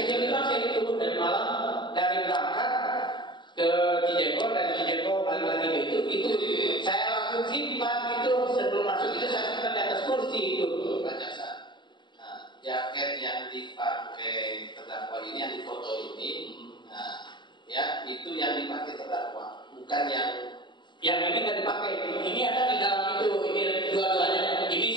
ini saya itu dari Malang, dari berangkat ke Cijego, dari Cijego balik lagi ke itu saya langsung simpan itu sebelum masuk itu saya simpan di atas kursi itu. Pak Jaksa, nah, jaket yang dipakai terdakwa ini, yang difoto ini, nah, ya itu yang dipakai terdakwa, bukan yang ini nggak dipakai. Ini ada di dalam itu. Ini dua-duanya. Ini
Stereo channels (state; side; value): late; right; 0.22 ms